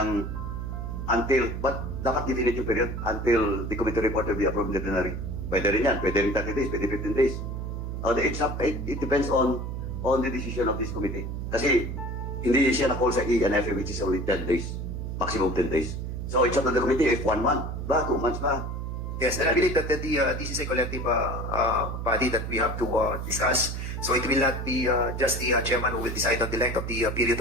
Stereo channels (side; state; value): right; noise; hum, 5 dB below the sound